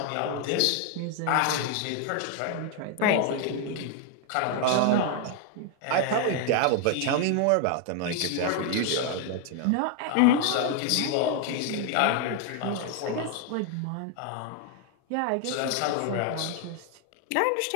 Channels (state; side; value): different; both; correlation 0.00